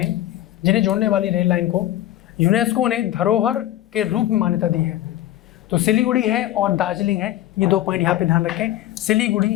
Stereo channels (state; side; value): quieter; right; 13.8 dB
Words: लाइन को यूनेस्को ने धरोहर के रूप में मान्यता दी है? तो सिलीगुड़ी है और दार्जिलिंग है। ये दो पॉइंट यहाँ पे ध्यान रखें,